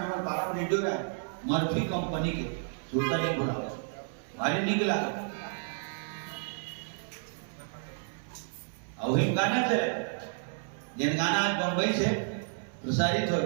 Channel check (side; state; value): left; silent; 57 dB below the other